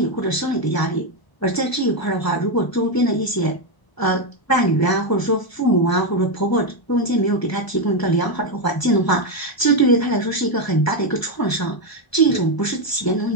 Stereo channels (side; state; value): right; late; 1.0 ms